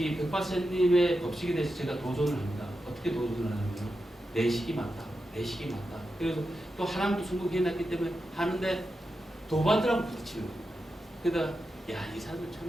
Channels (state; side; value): normal; both; correlation 0.89